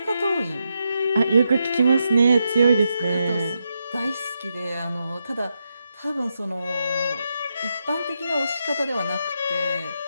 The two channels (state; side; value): inverted; both; correlation -0.84